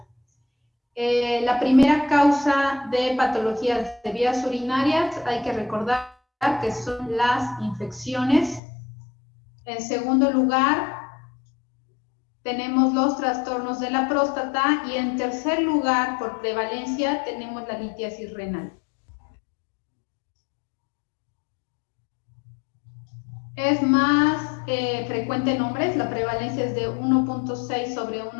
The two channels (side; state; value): right; drops out; at 8.6 s